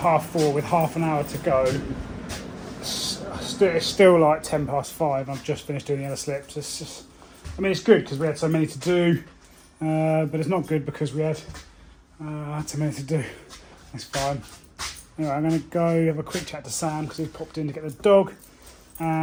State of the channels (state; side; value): identical; both; correlation 1.00